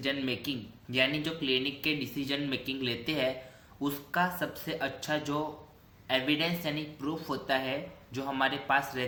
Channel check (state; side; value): identical; both; correlation 1.00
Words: making, यानी जो clinic के डिसीजन मेकिंग लेते हैं उसका सबसे अच्छा जो एविडेंस यानी प्रूफ होता है जो हमारे पास